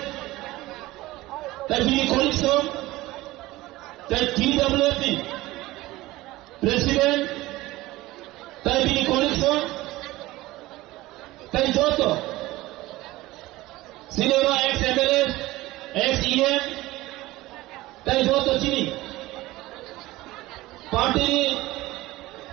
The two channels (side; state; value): left; quieter; 18.4 dB